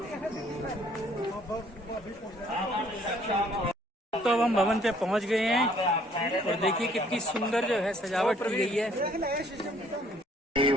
तो अब हम भवन पे पहुंच गए हैं और देखिए कितनी सुंदर जो है सजावट की गई है।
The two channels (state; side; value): normal; both; correlation 0.61